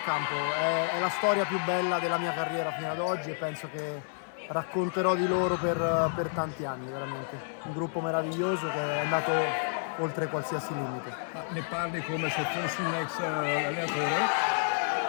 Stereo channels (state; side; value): silent; right; 58 dB below the other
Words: campo, è la storia più bella della mia carriera fino ad oggi e penso che racconterò di loro per tanti anni, veramente. Un gruppo meraviglioso che è andato oltre qualsiasi limite. Ne parli come se fossi un ex allenatore?